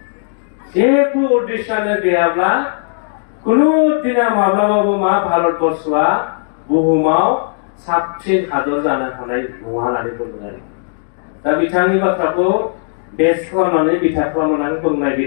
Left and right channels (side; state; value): right; silent; digital silence